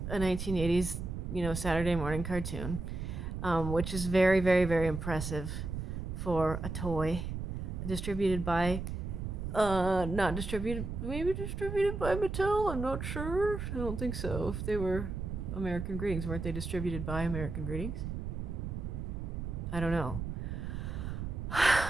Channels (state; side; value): noise; right; rumble, 5 dB below the sound